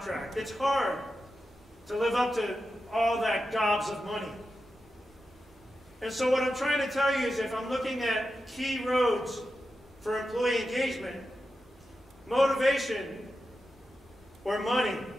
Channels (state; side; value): normal; both; correlation 0.90